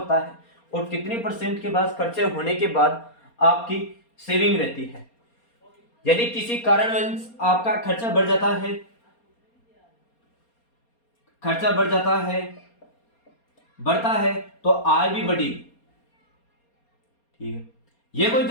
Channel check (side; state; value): right; late; 4.3 ms